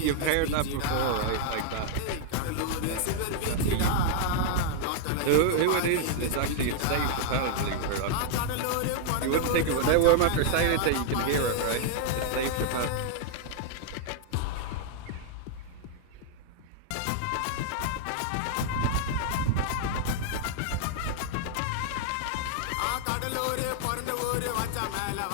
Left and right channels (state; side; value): different; both; correlation -0.01